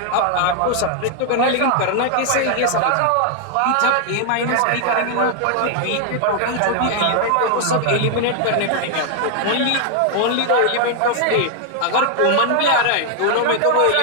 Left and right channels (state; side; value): different; both; correlation 0.00